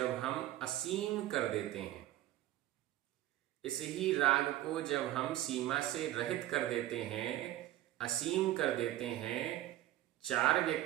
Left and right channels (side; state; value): left; quieter; 14.5 dB